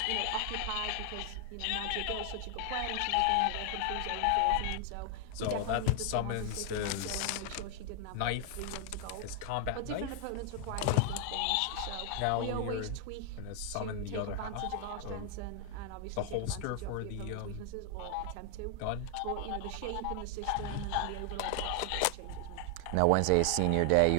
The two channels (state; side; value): different; both; correlation 0.00